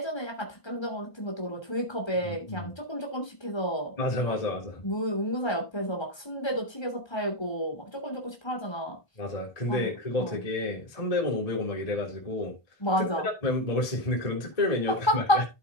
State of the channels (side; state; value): right; late; 1.3 ms